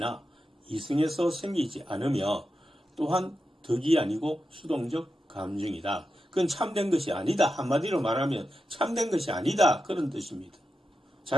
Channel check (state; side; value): normal; both; correlation 0.89